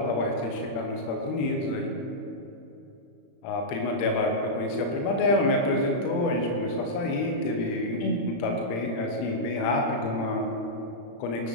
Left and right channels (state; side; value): late; right; 35 ms